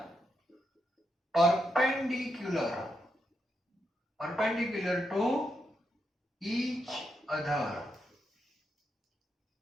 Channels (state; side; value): normal; both; correlation 0.83